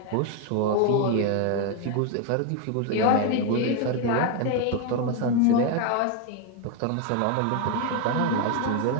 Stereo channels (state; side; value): different; both; correlation 0.01